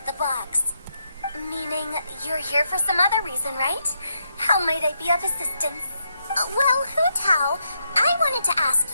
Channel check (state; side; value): inverted; both; correlation -0.80